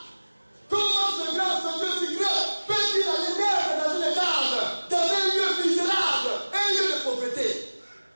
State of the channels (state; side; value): inverted; both; correlation -1.00